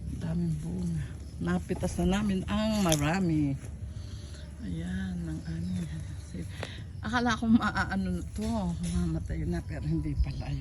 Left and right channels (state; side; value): identical; both; correlation 1.00